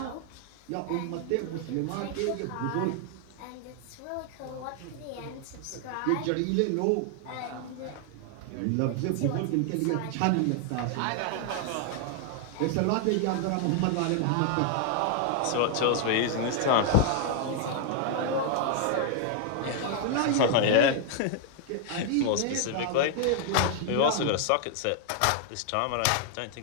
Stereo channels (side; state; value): both; different; correlation 0.00